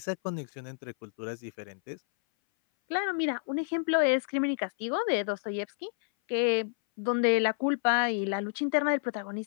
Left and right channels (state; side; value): silent; right; 58 dB below the other